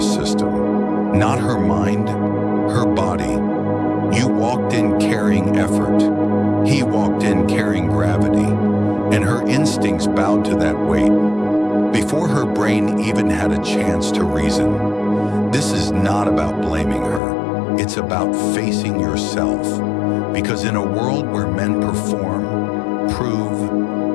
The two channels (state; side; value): drops out; right; at 17.2 s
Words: system, not her mind, her body. You walked in carrying effort. He walked in carrying gravity, and her instincts bowed to that weight before her brain even had a chance to reason. This is not about blaming her. It's about facing yourself. Because in a world where men perform,